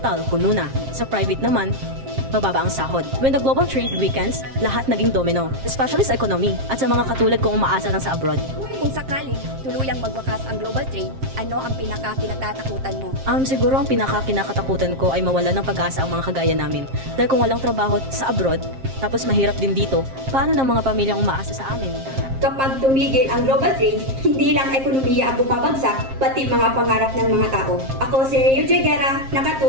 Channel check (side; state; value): left; late; 7.5 ms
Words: puno na. Sa private naman, mababa ang sahod. When the global trade weakens, lahat naging domino. Especially sa economy at sa mga katulad kong umaasa lang sa abroad. Kung sakaling tuluyang magwakas ang global trade, ano ang pinaka-kinatatakutan mo? Siguro ang pinaka-kinakatakutan ko ay mawala ng pag-asa ang mga kagaya namin. Dahil kung walang trabaho sa abroad, tapos mahirap din dito, paano ng mga pamilyang umaasa sa amin? Kapag tumigil ang global trade, hindi lang ekonomiya ang bumabagsak, pati mga pangarap ng mga tao. Ako si Rio Joy Guerra,